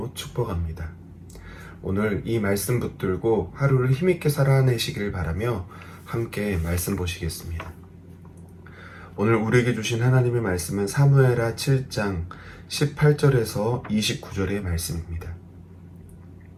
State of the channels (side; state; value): both; identical; correlation 1.00